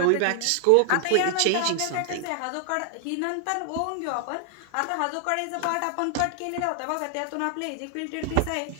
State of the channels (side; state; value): both; different; correlation 0.00